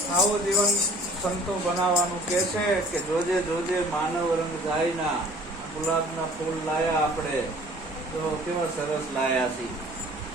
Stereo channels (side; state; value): both; normal; correlation 0.50